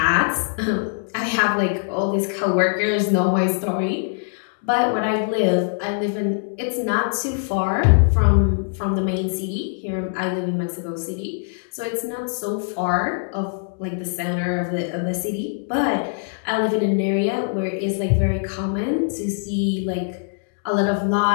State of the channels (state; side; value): silent; right; digital silence